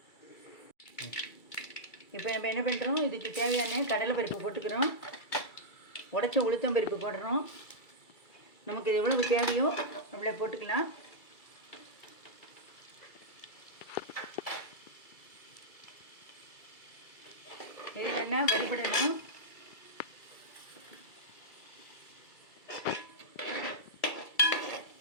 இப்போ நம்ம என்ன பண்ணுறோம், இதுக்கு தேவையான கடலை பருப்பு போட்டுக்கிறோம், உடைச்ச உளுத்தம் பருப்பு போடுறோம். நமக்கு இது எவ்வளவு தேவையோ நம்மளே போட்டுக்கலாம். இது என்ன வறுபடணும்.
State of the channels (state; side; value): late; right; 2.3 ms